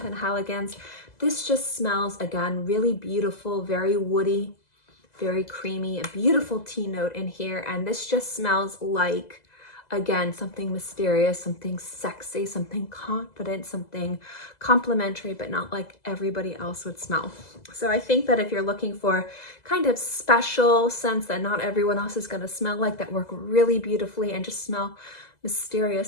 This just smells, again, really beautiful, very woody, very creamy, a beautiful tea note in here. And this just smells like, again, something mysterious, something sexy, something confident, something complimentary, but not like everybody else would smell. So I think that if you're looking for kind of special scents that not everyone else is going to smell like, that work really beautifully and just smell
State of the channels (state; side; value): late; right; 2.0 ms